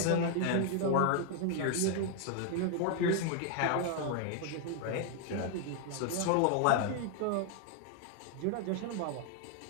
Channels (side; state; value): both; different; correlation 0.00